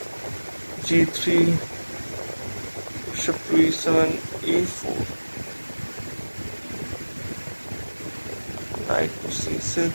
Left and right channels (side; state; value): both; inverted; correlation -1.00